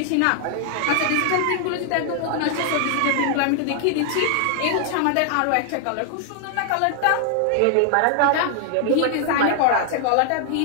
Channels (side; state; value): both; different; correlation 0.00